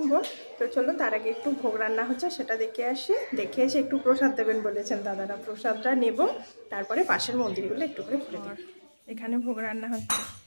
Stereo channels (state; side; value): inverted; both; correlation -1.00